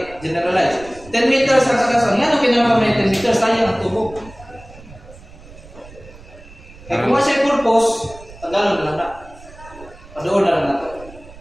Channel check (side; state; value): right; noise; rumble, 20 dB below the sound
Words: 10 meters ang sakasan. Yan ang kinama may 10 meters. Sayang ang tubo. Kaya kung siya purpose, tagalon na lang na. Padoon na lang na ito.